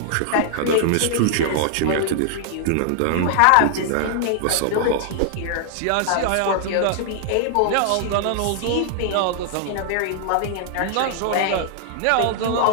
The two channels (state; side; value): different; both; correlation 0.00